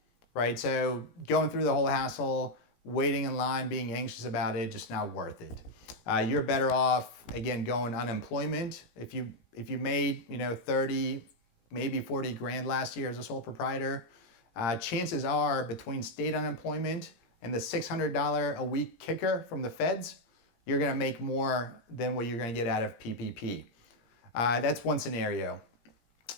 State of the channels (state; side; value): late; right; 17 ms